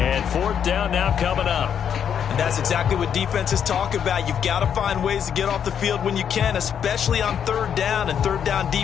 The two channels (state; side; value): quieter; right; 8.3 dB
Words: 4th down now coming up. And that's exactly what defenses talk about. You've got to find ways to get off the field when you can, especially on 3rd down. And 3rd down